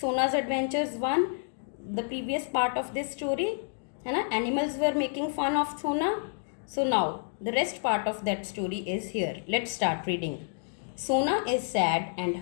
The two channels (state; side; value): silent; right; digital silence